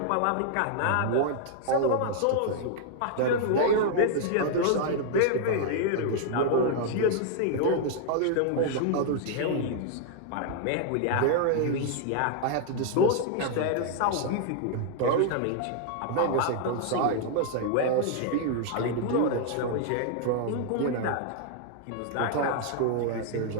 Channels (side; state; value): both; different; correlation 0.00